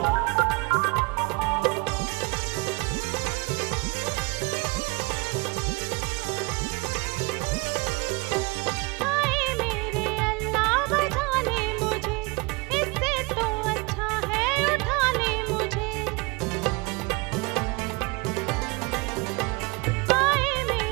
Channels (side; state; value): left; quieter; 27.0 dB